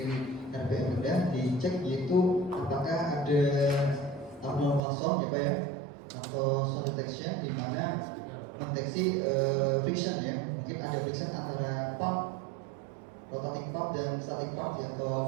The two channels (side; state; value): left; drops out; at 4.8 s